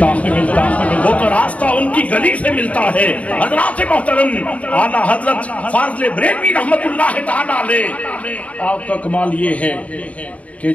وہ تو راستہ ان کی گلی سے ملتا ہے حضرات محترم اعلیٰ حضرت فاضل بریلوی رحمت اللہ تعالیٰ علیہ آپ کا کمال یہ ہے کہ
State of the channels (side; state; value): right; late; 0.067 ms